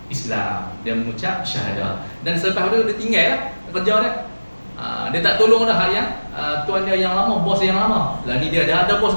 Islam. Dia mengucap syahadah. Dan selepas itu dia tinggal lah kerja dia. Dia tak tolong dah yang tuan dia yang lama, bos yang lama. Lah ni dia dah ada bos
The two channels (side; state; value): both; inverted; correlation -1.00